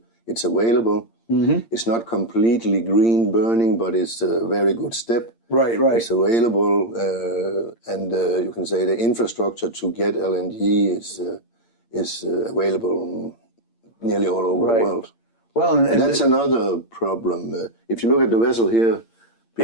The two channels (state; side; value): late; right; 8.7 ms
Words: It's available. Mm-hmm. It's not completely green burning, but it's a very good step. Right, right. It's available, and you can say the infrastructure to get LNG is available nearly all over the world. Well, and that's another problem. If you look at the vessel here